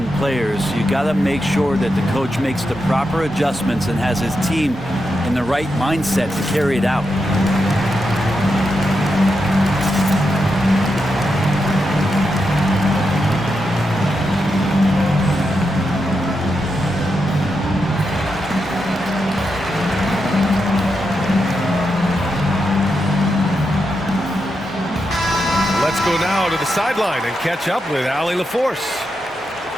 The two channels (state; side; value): normal; both; correlation 0.85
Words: players. You got to make sure that the coach makes the proper adjustments and has his team in the right mindset to carry it out. Let's go now to the sideline and catch up with Allie LaForce.